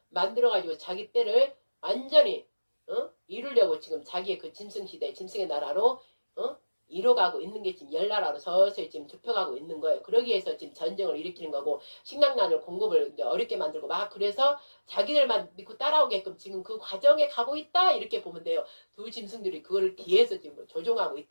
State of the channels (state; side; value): inverted; both; correlation -1.00